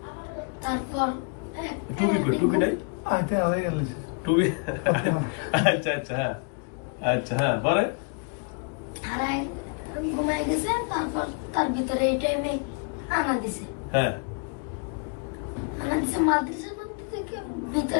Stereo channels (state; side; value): quieter; right; 37.6 dB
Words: তারপর টুপি কই? টুপি নাই? টুপি আচ্ছা আচ্ছা হ্যাঁ আচ্ছা হ্যাঁ পরে হারায় ঘুমায় গেছে। তারপর তার ভিতরে এই টাইমে আনা দিছে। হ্যাঁ আনা দিছে মাদ্রাসার মধ্যে থেকে